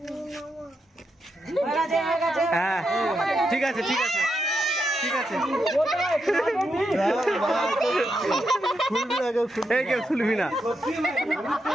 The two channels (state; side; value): normal; both; correlation 0.83